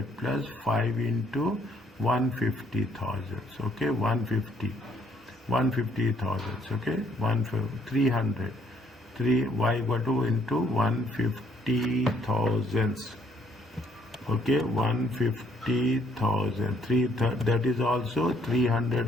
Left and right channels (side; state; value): both; normal; correlation 0.67